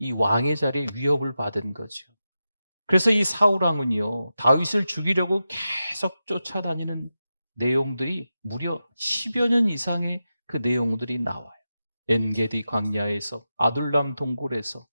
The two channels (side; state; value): both; inverted; correlation -0.91